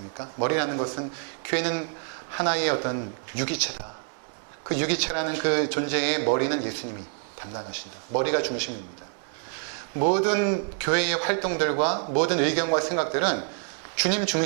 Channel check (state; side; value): silent; left; 55 dB below the other